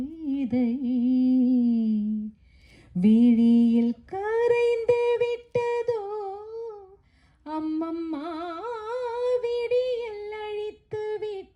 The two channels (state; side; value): identical; both; correlation 1.00